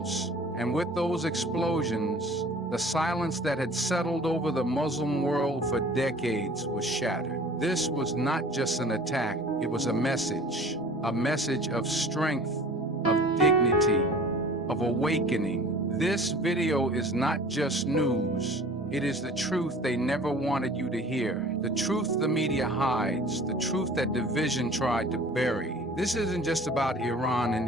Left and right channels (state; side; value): normal; both; correlation 0.46